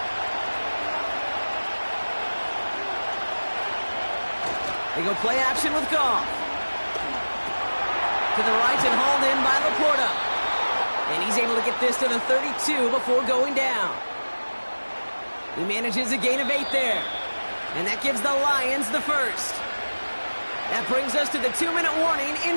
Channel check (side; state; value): both; inverted; correlation -1.00